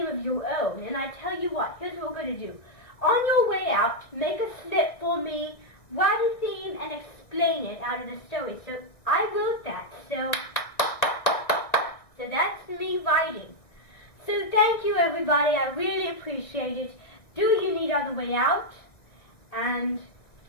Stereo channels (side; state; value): right; late; 1.7 ms